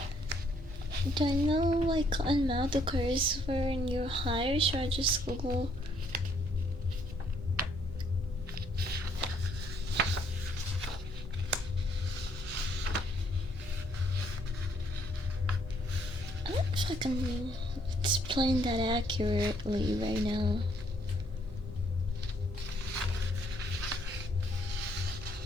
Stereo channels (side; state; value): right; noise; hum, 18 dB below the sound